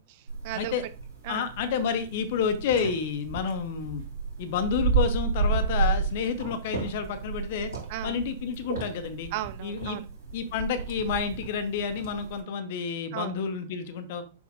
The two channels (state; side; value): inverted; both; correlation -0.34